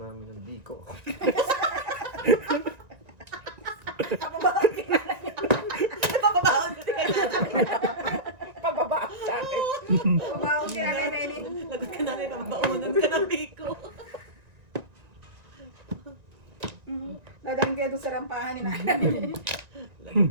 mami ng biko. Papabaon ko Pababa sa akin. Pabawag ka na, Nelly. Lagot ka namin, kababaunan ka ng biko. Dadaan kayo doon sa rampahan ni nanay.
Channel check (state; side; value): late; left; 1.6 ms